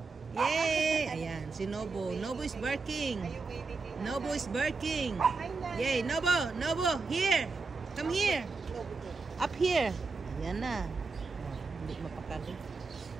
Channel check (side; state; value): left; quieter; 4.2 dB